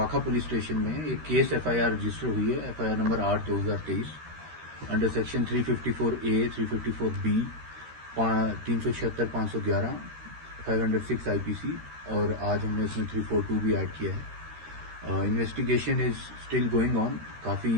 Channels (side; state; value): left; late; 13 ms